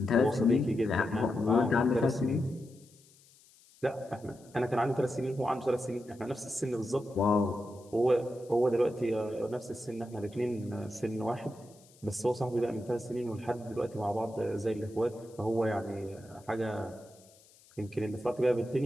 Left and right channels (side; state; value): left; noise; hiss, 27 dB below the sound